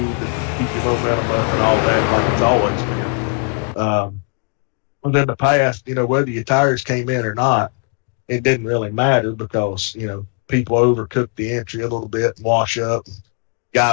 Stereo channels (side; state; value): right; quieter; 37.3 dB